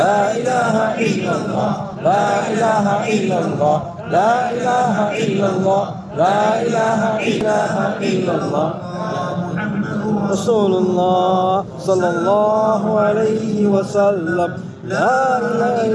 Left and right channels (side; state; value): both; identical; correlation 1.00